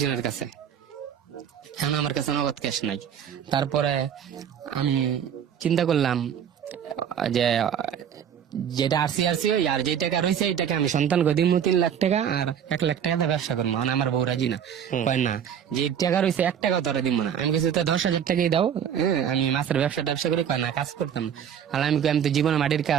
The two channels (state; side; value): quieter; left; 8.7 dB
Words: কাছে, এখন আমার কাছে নগদ ক্যাশ নাই। তারপরে আমি চিন্তা করলাম যে যেটা আরসি আর যে টাকা রয়েছে এই টাকা আমি সন্তানকে দিব 3 লাখ টাকা, আর 1 লাখ টাকা দিয়ে ব্যবসা করবো। মানে আমার বউ রাজি না, কয় না যে টাকা রয়েছে 1 টাকা তোরা দিব না। আমি কিছু 10,000 টাকাই দাও, আমি মাছের ব্যবসা করি, কয় না কাজ করতাম। আর আমি তো জীবনে মাটির